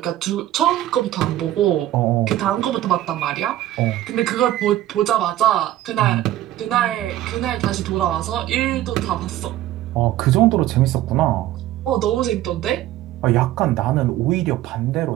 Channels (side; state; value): left; quieter; 13.9 dB